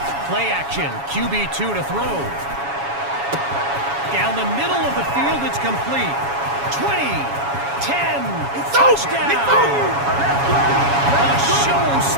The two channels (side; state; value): left; late; 7.2 ms